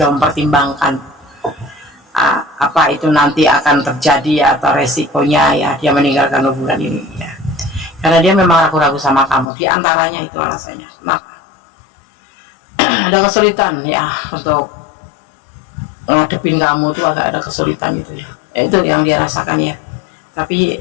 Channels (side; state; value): right; drops out; at 9.5 s